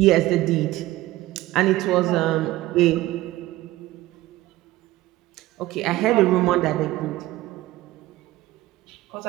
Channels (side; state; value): left; quieter; 17.1 dB